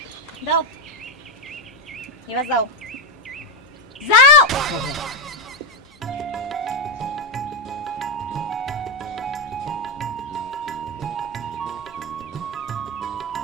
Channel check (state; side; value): normal; both; correlation 0.10